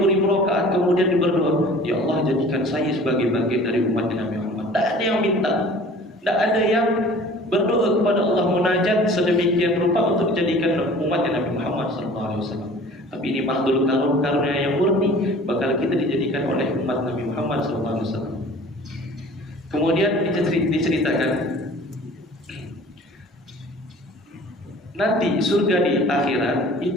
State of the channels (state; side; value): normal; both; correlation 0.46